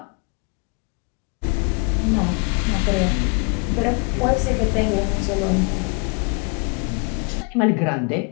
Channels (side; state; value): right; quieter; 34.1 dB